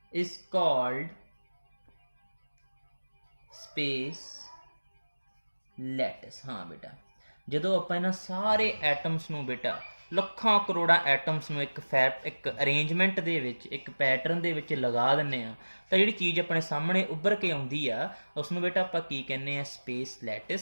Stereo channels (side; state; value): both; inverted; correlation -1.00